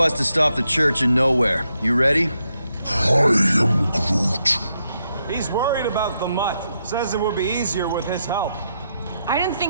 to stop the church in nowhere. You ready? I am Groot. He's worried about the mutt. Says it would be easier with his help. I didn't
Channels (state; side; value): inverted; both; correlation -0.81